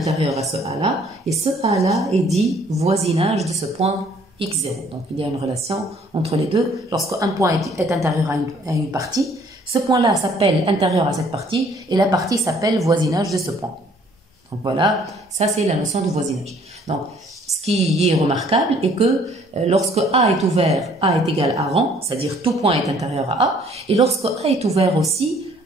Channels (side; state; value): both; normal; correlation 0.60